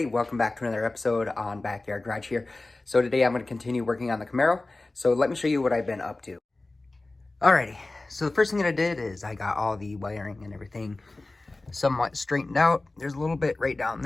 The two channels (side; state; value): right; quieter; 3.1 dB